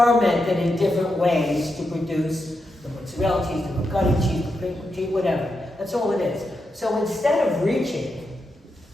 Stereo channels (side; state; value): both; normal; correlation 0.86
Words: in different ways to produce the mozzarella cheese, the ricotta cheese, the cream cheese, whatever. That's all it is. So instead of reaching